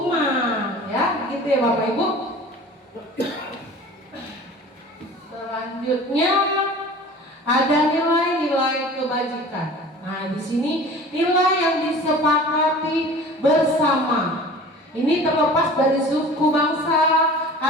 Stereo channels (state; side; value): normal; both; correlation 0.42